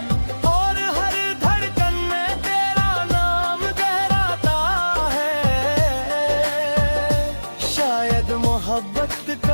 और हर धड़कन में तेरा नाम गहराता है। शायद मोहब्बत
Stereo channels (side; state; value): both; inverted; correlation -1.00